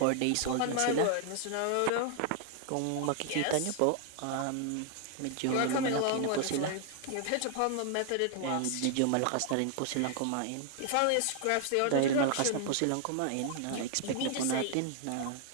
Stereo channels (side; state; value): both; different; correlation 0.00